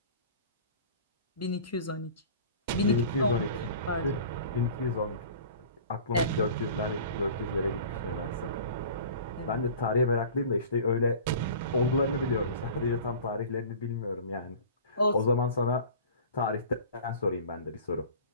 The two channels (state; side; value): inverted; both; correlation -0.41